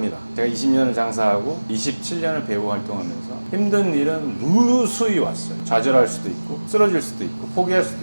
제가 20년을 장사하고 27년을 배우 활동하면서 힘든 일은 무수히 왔어요. 좌절할 수도 있고 쓰러질 수도 있고 포기할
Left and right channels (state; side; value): inverted; both; correlation -1.00